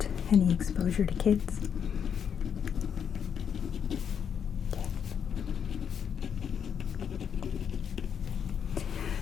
any exposure to kids? Okay.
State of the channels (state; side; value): quieter; right; 7.7 dB